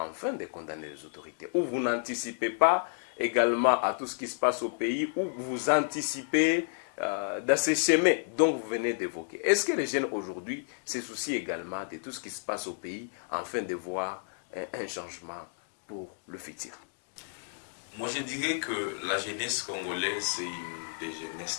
de condamner les autorités? Ou vous n'anticipez pas également à tout ce qui se passe au pays, ou vous anticipez dans ces chemins dont vous venez d'évoquer? Est-ce que les jeunes aujourd'hui se soucient également de tout ce qui se passe au pays, afin de voir un changement pour le futur? Moi, je dirais que la jeunesse congolaise, c'est une des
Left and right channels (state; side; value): silent; right; digital silence